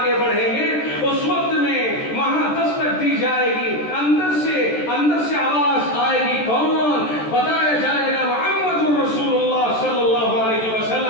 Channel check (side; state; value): right; late; 14 ms